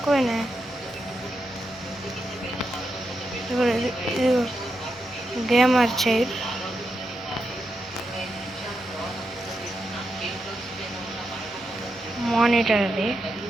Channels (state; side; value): normal; both; correlation 0.86